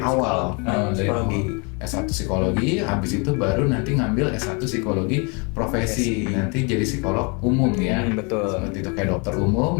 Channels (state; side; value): quieter; right; 32.7 dB